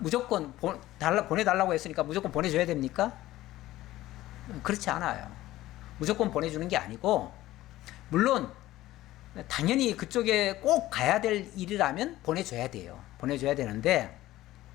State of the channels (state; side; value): quieter; right; 15.8 dB